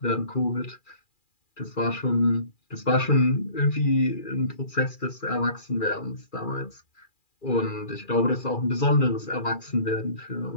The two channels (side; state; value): right; late; 2.4 ms